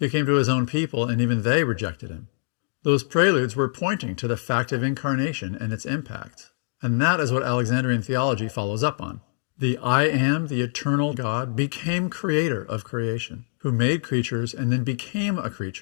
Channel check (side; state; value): right; silent; digital silence